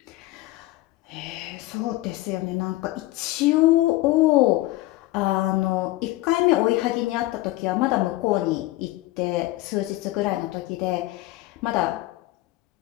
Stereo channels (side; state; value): right; quieter; 17.9 dB